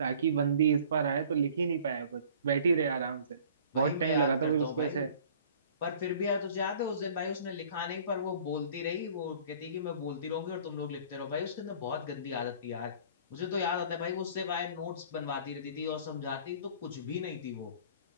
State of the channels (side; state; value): both; inverted; correlation -0.50